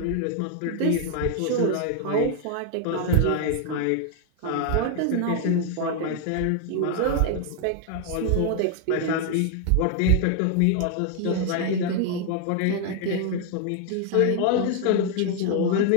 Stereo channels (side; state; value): both; different; correlation 0.00